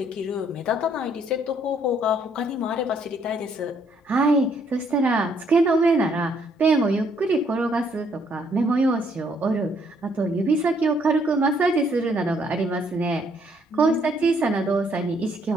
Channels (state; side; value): normal; both; correlation 0.68